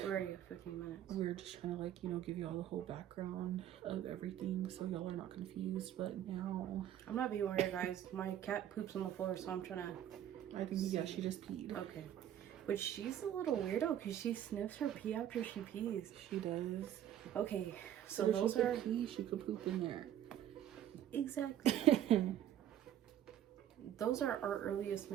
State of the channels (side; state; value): left; quieter; 10.9 dB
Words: Where are you? 15 minutes. We were just trying to like, you know, give y'all the whole background of everything so y'all are not confused. But now I'm not being weird, guys. My cat poops on the floor, so I'm trying to... I think, yeah, she just peed. Okay. But she's a little weirdo because she sniffs her pee after she pees. She does. Okay, so if those she are... could pee, she could poop in there. Exactly. Those are our earliest